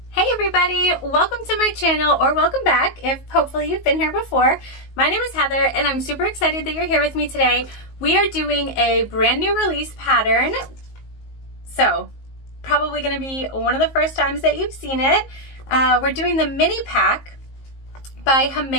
Hey everybody, welcome to my channel, or welcome back if hopefully you've been here before. My name is Heather and I'm super excited that you're here with me today. We are doing a brand new release pattern, so probably going to be one of the first times that you've seen it. We're doing the mini pack by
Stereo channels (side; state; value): right; late; 19 ms